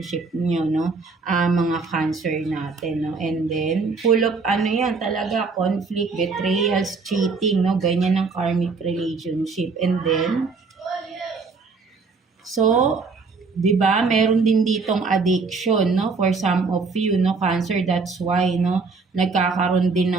niyo, no? Mga Cancer natin, no? And then full of ano 'yan, talaga conflict, betrayals, cheating, no? Ganyan ang karmic relationship. And then so 'di ba, meron din ditong addiction, no, for some of you, no, Cancer. That's why, no, nagkakaroon din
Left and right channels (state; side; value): quieter; left; 4.5 dB